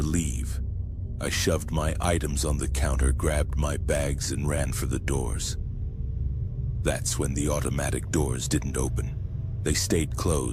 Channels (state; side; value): identical; both; correlation 1.00